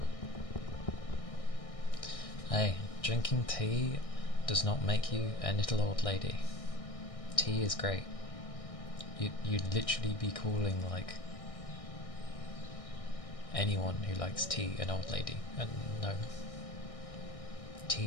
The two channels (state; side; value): late; right; 1.6 ms